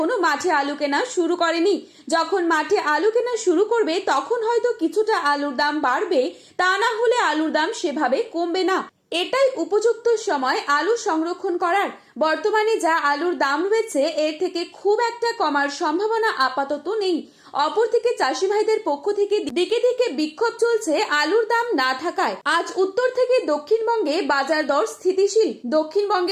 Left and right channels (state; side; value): identical; both; correlation 1.00